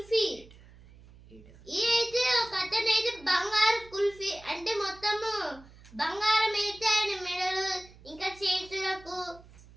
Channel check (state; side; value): noise; right; hum, 23 dB below the sound